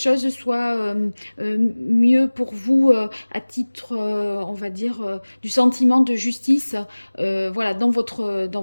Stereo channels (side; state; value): both; inverted; correlation -1.00